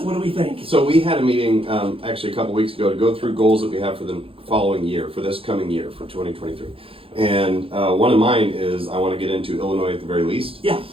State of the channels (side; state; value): left; late; 0.27 ms